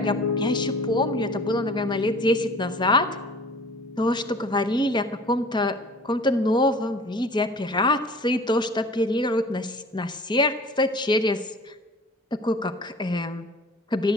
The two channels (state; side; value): normal; both; correlation 0.45